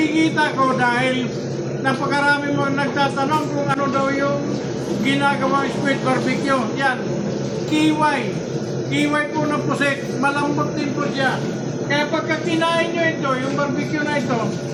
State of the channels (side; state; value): both; identical; correlation 1.00